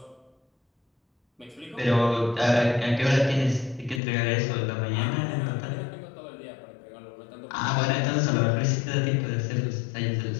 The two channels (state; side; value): drops out; right; at 4.0 s